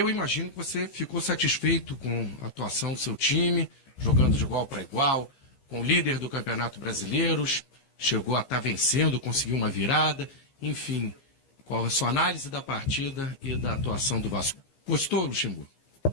imagino que você ficou satisfeito com a atuação do seu time, jogando de igual para igual, com o líder do Campeonato Brasileiro, chegou a estar vencendo, conseguiu uma virada. Enfim, qual é a sua análise da partida e da atuação do Vasco? Gostou, Luxemburgo?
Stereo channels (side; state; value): right; late; 15 ms